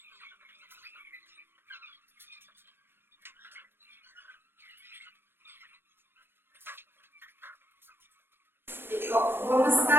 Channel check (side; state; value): left; late; 0.10 ms